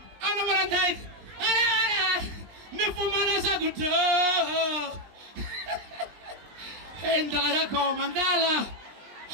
I know what I'm like. Nifumana good. And I come Mandala.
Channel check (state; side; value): late; left; 20 ms